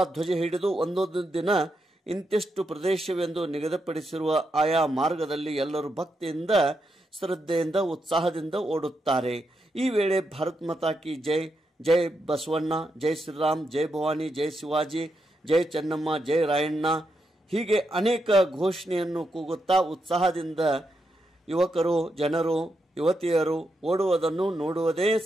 ಧ್ವಜ ಹಿಡಿದು ಒಂದೊಂದು ದಿನ ಇಂತಿಷ್ಟು ಪ್ರದೇಶವೆಂದು ನಿಗದಿಪಡಿಸಿರುವ ಆಯಾ ಮಾರ್ಗದಲ್ಲಿ ಎಲ್ಲರೂ ಭಕ್ತಿಯಿಂದ, ಶ್ರದ್ಧೆಯಿಂದ, ಉತ್ಸಾಹದಿಂದ ಓಡುತ್ತಾರೆ. ಈ ವೇಳೆ ಭಾರತ್ ಮಾತಾ ಕಿ ಜೈ, ಜೈ ಬಸವಣ್ಣ, ಜೈ ಶ್ರೀರಾಮ್, ಜೈ ಭವಾನಿ, ಜೈ ಶಿವಾಜಿ, ಜೈ ಚೆನ್ನಮ್ಮ, ಜೈ ರಾಯಣ್ಣ ಹೀಗೆ ಅನೇಕ ಘೋಷಣೆಯನ್ನು ಕೂಗುತ್ತಾ ಉತ್ಸಾಹದಿಂದ ಯುವಕರು, ಜನರು, ಯುವತಿಯರು ಓಡುವುದನ್ನು ನೋಡುವುದೇ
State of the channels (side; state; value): both; normal; correlation 0.83